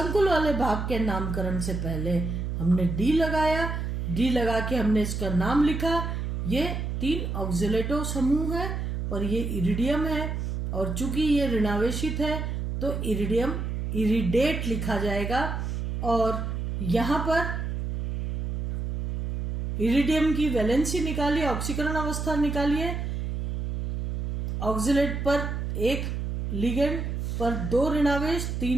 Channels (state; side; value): noise; right; hum, 3 dB below the sound